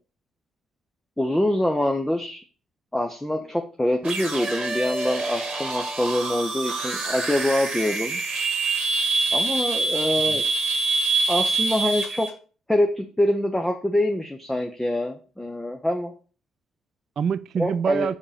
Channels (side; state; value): both; normal; correlation 0.87